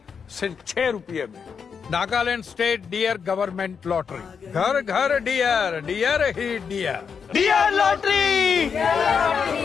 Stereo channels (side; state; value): right; quieter; 6.4 dB